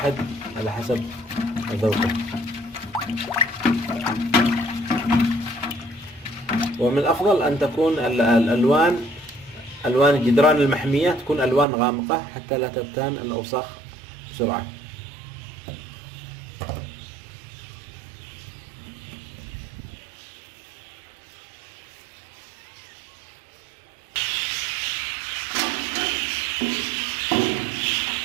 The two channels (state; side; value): drops out; left; at 11.7 s